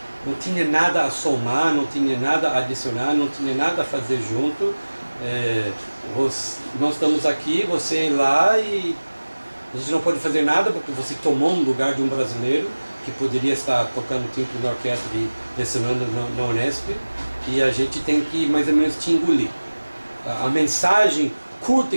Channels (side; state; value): both; inverted; correlation -1.00